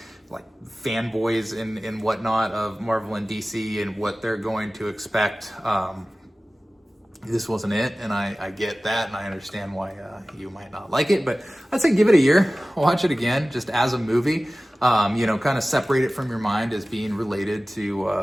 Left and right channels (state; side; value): normal; both; correlation 0.97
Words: fanboys and whatnot of Marvel and DC and what they're going to expect. This wasn't it, and I get that, and I understand why you might not like it, but I'd say give it a year, watch it again, just as a movie. kind of separate it from your mind as being related to,